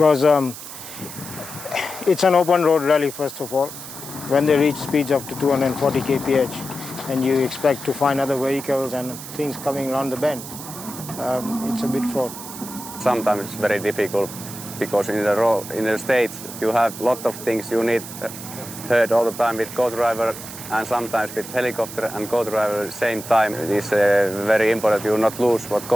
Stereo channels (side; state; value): right; noise; hiss, 12 dB below the sound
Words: it's an open road rally, first of all. When they reach speeds up to 240 kph and you expect to find other vehicles and things coming around the bend, it's a bit fraught. Sometimes it's very difficult because in the States you have a lot of things you need heard all the time with co-driver and sometimes with helicopter and co-driver at the same time. It is very important you not lose what